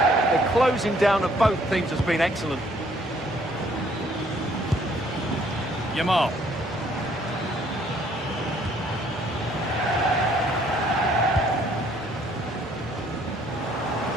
The closing down of both teams has been excellent. Yamal.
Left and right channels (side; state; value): both; normal; correlation 0.63